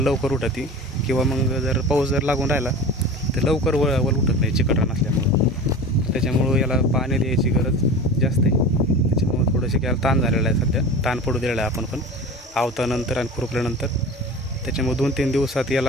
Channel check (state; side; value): normal; both; correlation 0.34